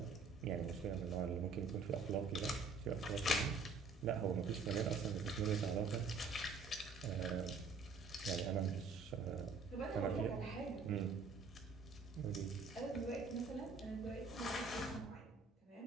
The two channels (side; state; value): left; quieter; 4.3 dB